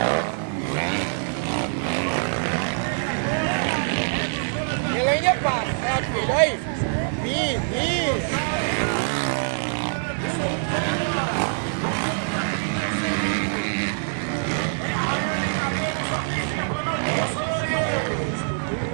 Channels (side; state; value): left; silent; digital silence